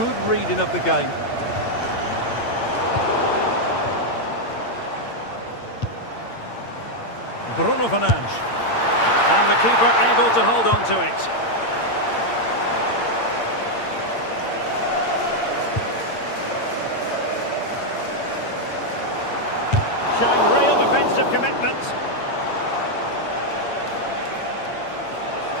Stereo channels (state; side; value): late; right; 8.7 ms